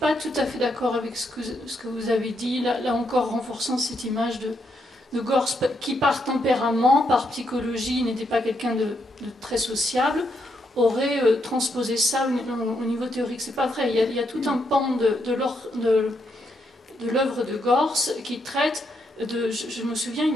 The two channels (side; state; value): both; normal; correlation 0.78